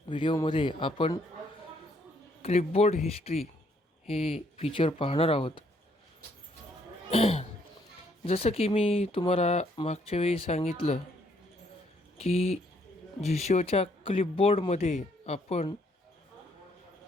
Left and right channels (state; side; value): normal; both; correlation 0.69